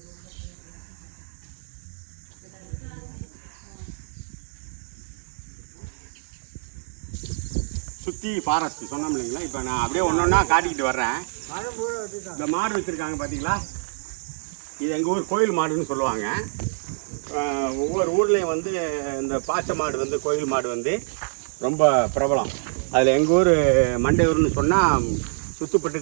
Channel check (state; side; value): silent; left; 59 dB below the other